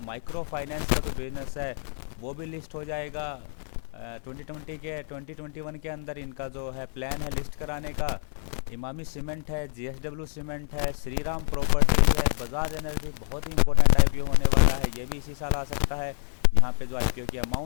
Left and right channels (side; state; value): right; silent; 60 dB below the other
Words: फाइनेंस का जो बिजनेस है वो भी लिस्ट हो जाएगा 2021 के अंदर। इनका जो है प्लान है लिस्ट कराने का। इमामी सीमेंट है, जीएसडब्ल्यू सीमेंट है, श्रीराम प्रॉपर्टीज है, बजाज एनर्जी बहुत ही इंपॉर्टेंट आईपीओ होने वाला है, ये भी इसी साल आ सकता है। यहाँ पे जो आईपीओ की